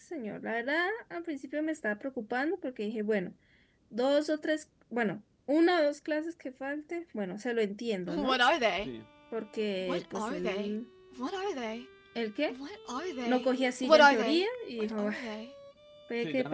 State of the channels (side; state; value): both; identical; correlation 1.00